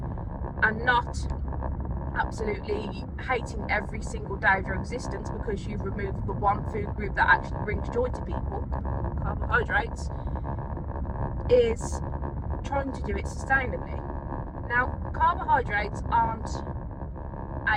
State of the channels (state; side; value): identical; both; correlation 1.00